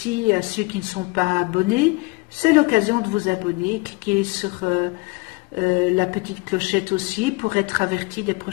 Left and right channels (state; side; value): quieter; right; 25.6 dB